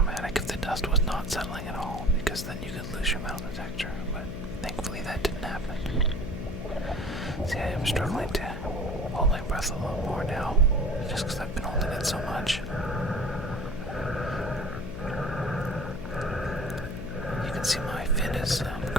if the dust was not settling at all, because then you could lose your metal detector, but thankfully that didn't happen. See, I am struggling to hold my breath a little more now, just because I've been holding it so much. You can see my fin is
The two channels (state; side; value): noise; left; hum, 7 dB below the sound